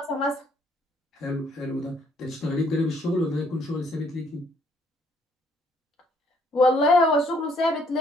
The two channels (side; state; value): both; normal; correlation 0.66